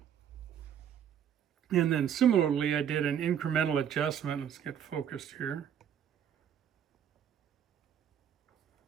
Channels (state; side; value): quieter; left; 9.0 dB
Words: And then similarly, I did an incremental adjustment. Let's get focused here.